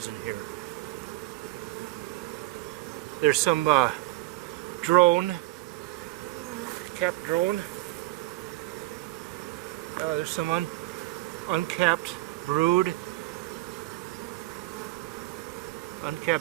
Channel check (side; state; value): left; quieter; 18.9 dB